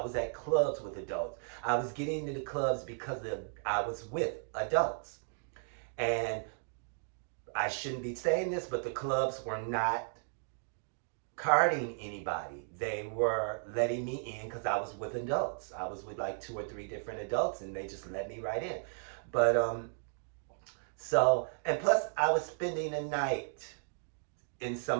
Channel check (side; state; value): left; silent; digital silence